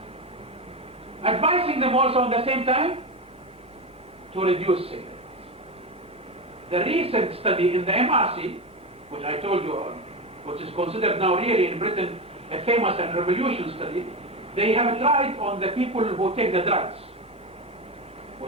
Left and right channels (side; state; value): both; normal; correlation 0.18